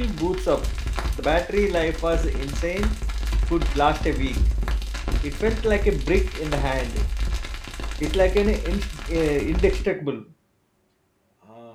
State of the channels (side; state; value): both; identical; correlation 1.00